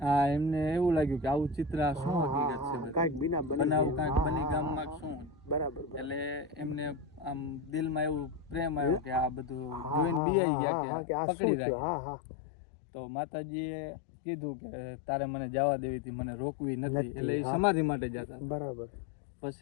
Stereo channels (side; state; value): right; drops out; at 10.2 s